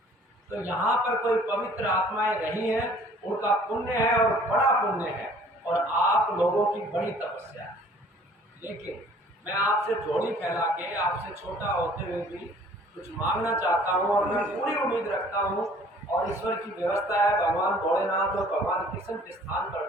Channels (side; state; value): both; normal; correlation 0.54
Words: तो यहाँ पर कोई पवित्र आत्माएं रही हैं, उनका पुण्य है और बड़ा पुण्य है, और आप लोगों की बड़ी तपस्या है। लेकिन मैं आपसे झोली फैला के, आपसे छोटा होते हुए भी कुछ मांगना चाहता हूँ, और मैं पूरी उम्मीद रखता हूँ, और ईश्वर की व्यवस्था है, भगवान भोलेनाथ और भगवान कृष्ण के स्थान पर